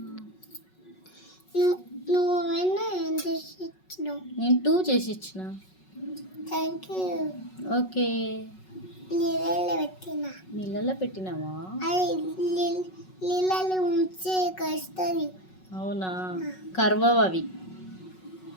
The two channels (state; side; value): late; right; 5.4 ms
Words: నేను 2 చేసి ఇచ్చిన. Thank you. ఓకే. నీళ్ళలో పెట్టినావా? నీళ్ళలో ఉంచే కస్తుంది. అవునా, కర్వవి అవి.